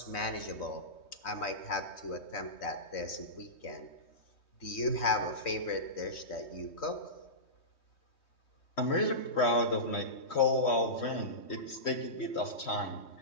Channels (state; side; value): late; right; 3.2 ms